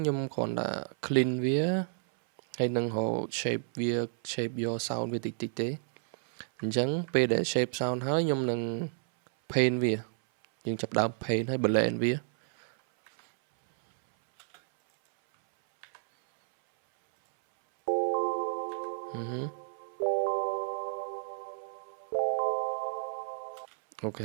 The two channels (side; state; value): left; silent; 57 dB below the other